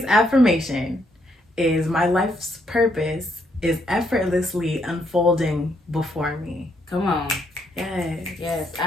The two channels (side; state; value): both; normal; correlation 0.74